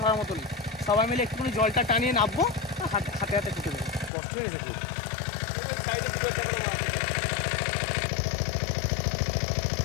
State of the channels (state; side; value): drops out; right; at 4.1 s